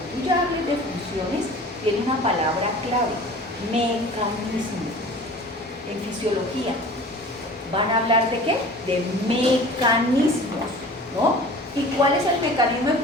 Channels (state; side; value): normal; both; correlation 0.42